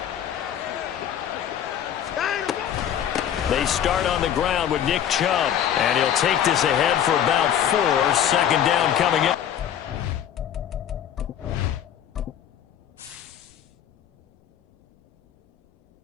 They start on the ground with Nick Chubb, and he'll take this ahead for about 4. 2nd down coming in.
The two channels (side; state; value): right; quieter; 9.8 dB